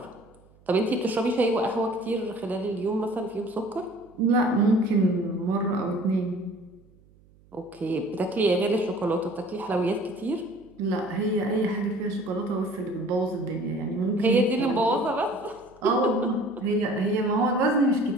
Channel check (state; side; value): noise; right; hum, 29 dB below the sound